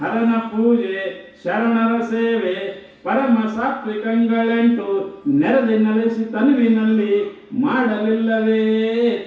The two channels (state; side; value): identical; both; correlation 1.00